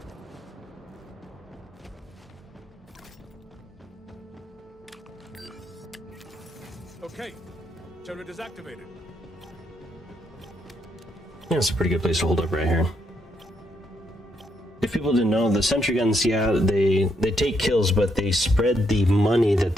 Okay, turret is activated. Yeah, it's a pretty good place to hold up right here. If people didn't know, the sentry guns, yeah, they take kills, but they spread the money that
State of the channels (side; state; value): both; normal; correlation 0.76